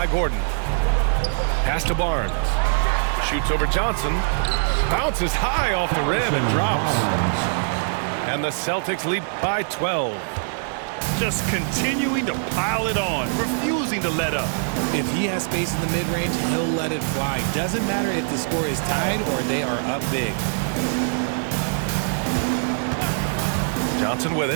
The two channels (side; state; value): left; silent; 63 dB below the other